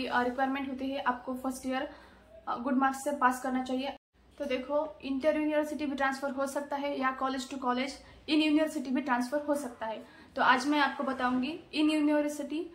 होती है आपको फर्स्ट ईयर गुड मार्क्स से पास करना चाहिए। तो देखो, इंटर यूनिवर्सिटी भी ट्रांसफर हो सकता है या college to college in university भी ट्रांसफर हो सकता है। तो आज मैं आपको बताऊंगी in university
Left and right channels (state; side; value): identical; both; correlation 1.00